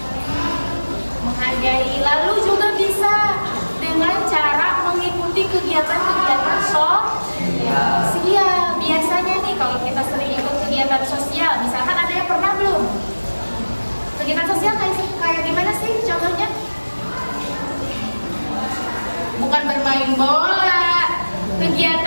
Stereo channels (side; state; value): both; inverted; correlation -1.00